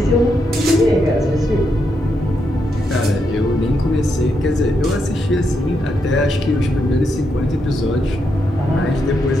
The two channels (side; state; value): both; normal; correlation 0.81